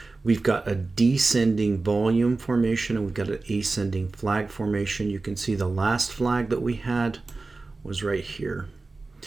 We've got a descending volume formation and we've got an ascending flag formation. You can see the last flag that we had was right here.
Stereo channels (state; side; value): quieter; left; 3.6 dB